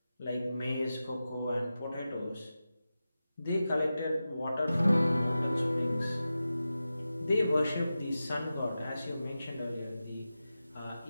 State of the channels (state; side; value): inverted; both; correlation -0.93